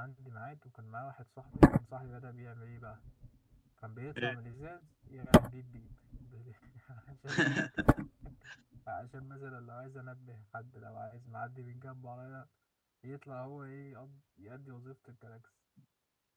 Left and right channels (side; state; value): both; identical; correlation 1.00